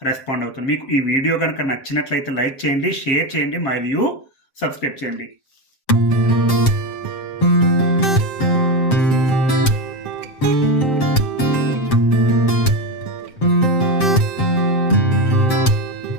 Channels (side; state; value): right; late; 7.6 ms